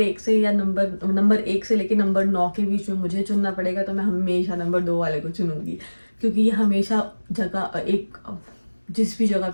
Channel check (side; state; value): both; inverted; correlation -1.00